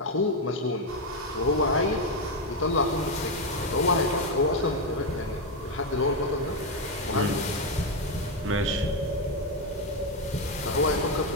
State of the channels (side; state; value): both; normal; correlation 0.06